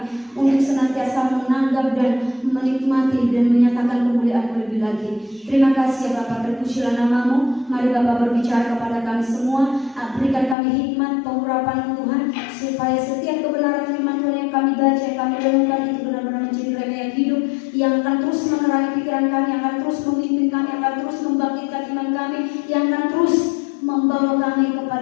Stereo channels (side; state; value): right; drops out; at 10.6 s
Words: untuk senantiasa menanggap dan menikmati dan menyatakan kemuliaan-Mu lebih lagi. Terima kasih ya Bapa, terpujilah nama-Mu. Mari Bapa berbicara kepada kami semua, berikan kami hikmat, pengurapan Tuhan, supaya setiap kebenaran firman Tuhan yang kami baca, yang kami renungkan itu benar-benar menjadi rema hidup yang akan terus menerangi pikiran kami, yang akan terus memimpin kami, yang akan terus membangkitkan iman kami, yang akan terus membawa kami